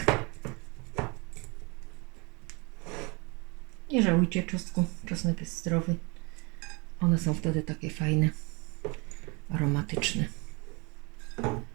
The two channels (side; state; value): left; quieter; 28.9 dB